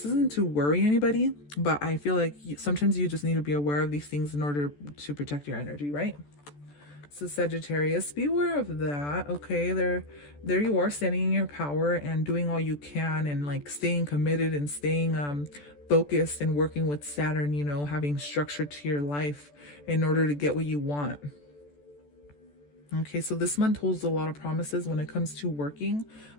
isn't to worry anybody, but I feel like sometimes you just need to be aware of these things in order to protect your energy, right? So Sagittarius, be aware of that. Okay, there you are, standing in your power and doing all you can, and like staying committed and staying focused and working with Saturn, you know, having structure to your life in order to get what you want. Okay, so this month holds a lot of promises when it comes to working.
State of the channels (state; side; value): late; right; 14 ms